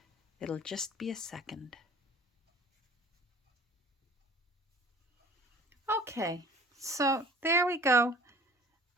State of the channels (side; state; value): both; normal; correlation 0.48